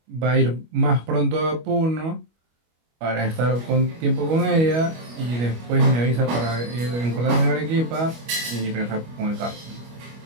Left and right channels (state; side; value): late; left; 25 ms